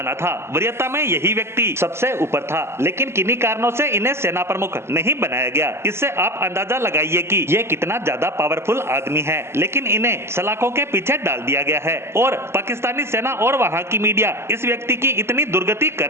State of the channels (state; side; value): late; left; 0.12 ms